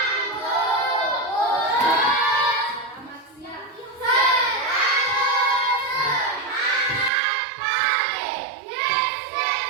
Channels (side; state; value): left; drops out; at 7.1 s